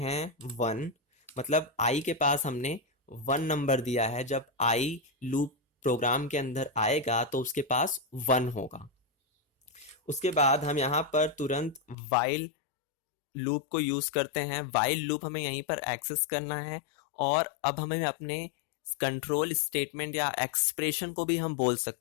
1, मतलब आई के पास हमने 1 नंबर दिया है। जब आई लूप प्रोग्राम के अंदर आएगा तो उसके पास 1 होगा। उसके बाद हम यहाँ पर तुरंत वाइल लूप को यूज करते हैं। वाइल लूप हमें यहीं पर एक्सेस करना है और अब हमें अपने कंट्रोल स्टेटमेंट या एक्सप्रेशन को भी हम बोल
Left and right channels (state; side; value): drops out; right; at 12.0 s